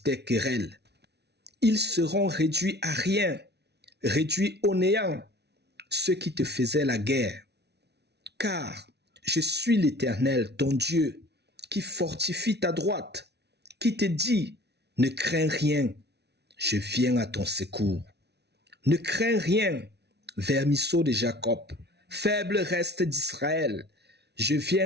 querelle, ils seront réduits à rien, réduits au néant, ceux qui te faisaient la guerre. Car je suis l'Éternel, ton Dieu, qui fortifie ta droite, qui te dit, ne crains rien, je viens à ton secours. Ne crains rien, vermisseau de Jacob, faible reste d'Israël, je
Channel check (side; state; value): left; late; 0.49 ms